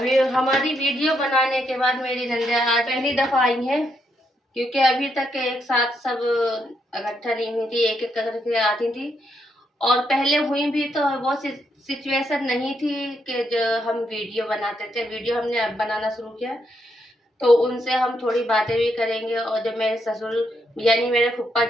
हमारी वीडियो बनाने के बाद मेरी नंदिया आज पहली दफ़ा आई हैं, क्योंकि अभी तक एक साथ सब इकट्ठा नहीं हुई थी, एक एक करके आती थी। और पहले हुई भी तो वो सिचुएशन नहीं थी कि जो हम वीडियो बनाते थे। वीडियो हमने अब बनाना शुरू किया, तो उनसे हम थोड़ी बातें भी करेंगे। और जब मेरे ससुर यानी मेरे फुप्पा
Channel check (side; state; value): both; normal; correlation 0.78